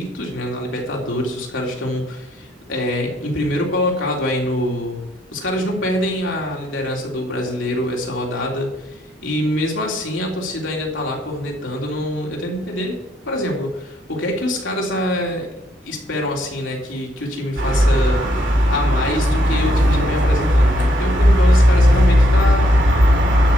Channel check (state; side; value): normal; both; correlation 0.72